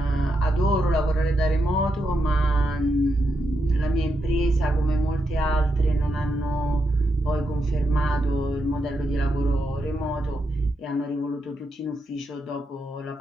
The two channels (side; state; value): both; normal; correlation 0.83